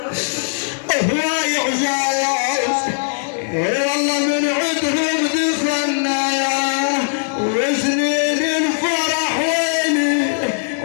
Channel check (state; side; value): silent; right; digital silence